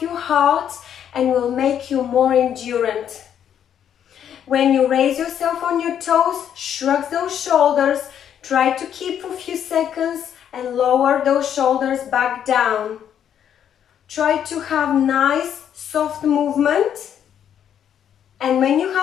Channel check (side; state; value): right; quieter; 9.3 dB